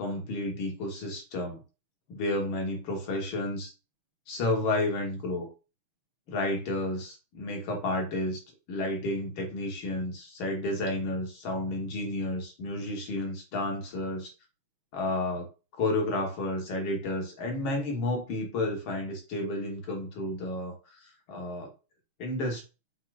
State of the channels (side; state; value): right; late; 6.3 ms